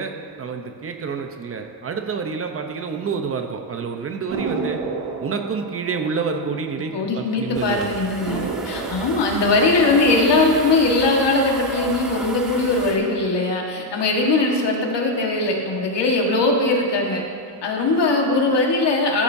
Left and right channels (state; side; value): normal; both; correlation 0.04